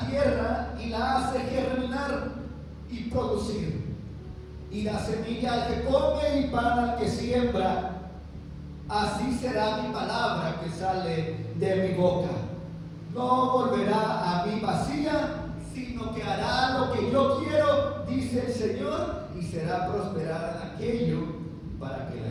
tierra y la hace germinar y producir, y da semilla al que come y pan al que siembra, así será mi palabra que sale de mi boca. No volverá a mí vacía, sino que hará lo que yo quiero, dice el Señor, y será prosperada en aquello para que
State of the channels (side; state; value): both; identical; correlation 1.00